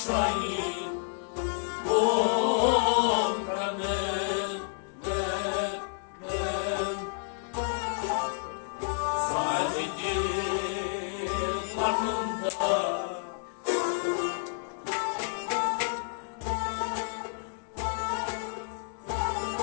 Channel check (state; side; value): silent; right; digital silence